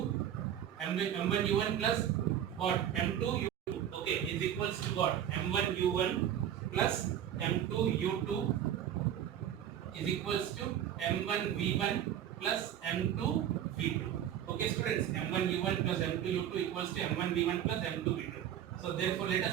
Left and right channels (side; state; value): left; quieter; 10.3 dB